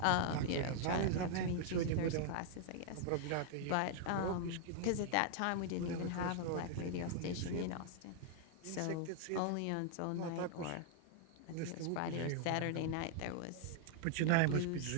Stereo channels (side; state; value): both; different; correlation 0.00